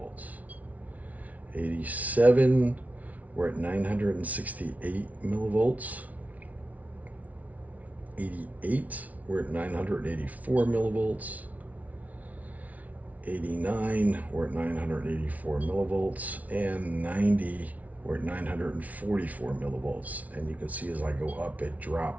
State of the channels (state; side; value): late; left; 0.071 ms